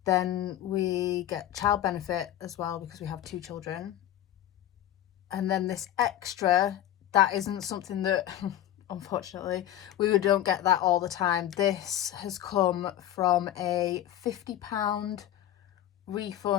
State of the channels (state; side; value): quieter; right; 12.3 dB